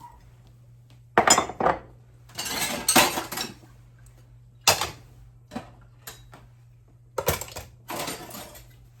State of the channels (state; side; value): identical; both; correlation 1.00